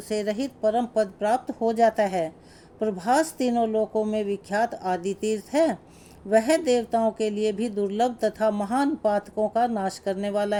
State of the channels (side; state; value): both; identical; correlation 1.00